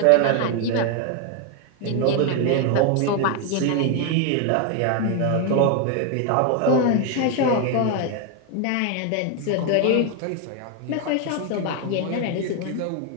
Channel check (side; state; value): both; different; correlation 0.01